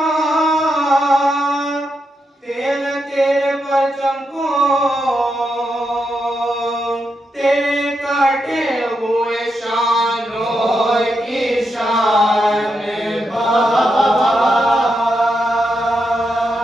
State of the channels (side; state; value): both; normal; correlation 0.84